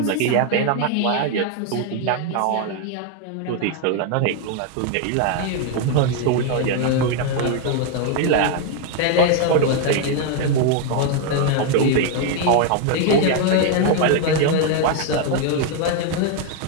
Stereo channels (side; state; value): both; different; correlation 0.01